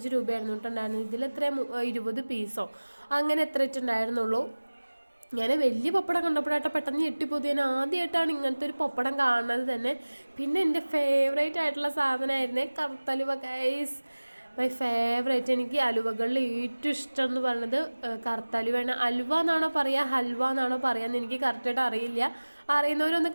രൂപയായിരുന്നു കേട്ടുണ്ടായിരുന്നത്. ഇതിലെത്ര 20 പീസോ അങ്ങനെ എത്ര ഇട്ടുണ്ടായിരുന്നുള്ളൂ. ഞാൻ വലിയ പപ്പടം കണ്ടപ്പോഴായിട്ട് പെട്ടെന്ന് ഞെട്ടിപ്പോയി. ഞാൻ ആദ്യമായിട്ടാണ് ഇങ്ങനത്തെ ഒരു പപ്പടം കാണുന്നത് തന്നെ. പിന്നെ എൻ്റെ ഫേവറേറ്റ് ആയിട്ടുള്ള സാധനമായിരുന്നേ കറുത്തലുവ ഗൈസ്, മൈ ഫേവറേറ്റ്. എനിക്ക് അലുവകളിൽ ഏറ്റവും ഇഷ്ടം എന്ന് പറയുന്നത് കറുത്തലുവയാണ്. അലുവ എന്നാണോ പറയുക ഹൽവ എന്നാണോ പറയുക എനിക്ക് കറക്റ്റായിട്ട് അറിയില്ല. അറിയുന്നവരൊന്ന്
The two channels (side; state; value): both; inverted; correlation -1.00